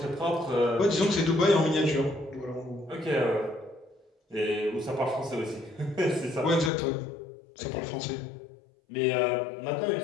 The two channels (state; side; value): drops out; right; at 6.7 s